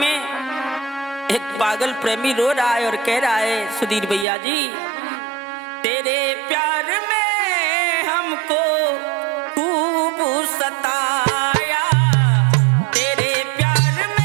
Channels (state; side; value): drops out; left; at 4.2 s